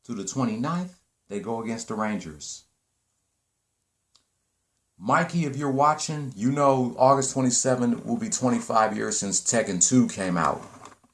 to the 29th, they go against the Rangers. Mikey, if you're watching, you know August 27th will be 25 years since Tekken 2 came out.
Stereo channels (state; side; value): identical; both; correlation 1.00